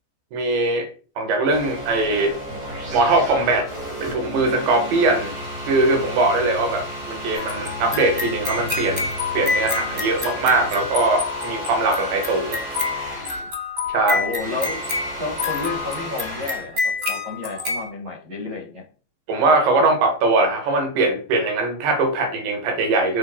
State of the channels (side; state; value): left; late; 14 ms